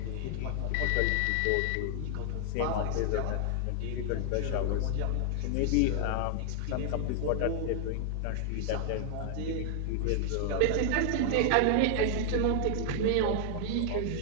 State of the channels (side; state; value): both; different; correlation 0.00